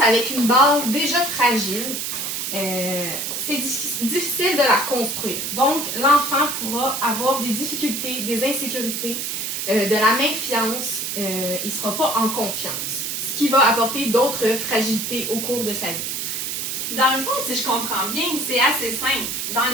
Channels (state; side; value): noise; right; hiss, 3 dB below the sound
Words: avec une base déjà fragile, c'est difficile de la construire. Donc, l'enfant pourra avoir des difficultés, des insécurités, de la méfiance, il ne sera pas en confiance, ce qui va apporter d'autres fragilités au cours de sa vie. Dans le fond, si je comprends bien, c'est assez simple. Dans